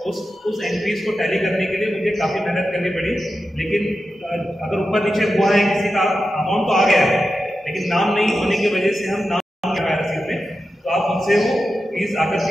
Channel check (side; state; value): both; normal; correlation 0.91